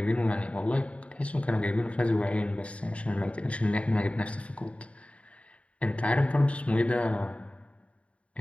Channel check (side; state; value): right; late; 0.063 ms